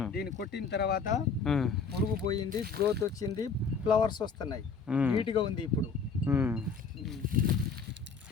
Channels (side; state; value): right; quieter; 5.3 dB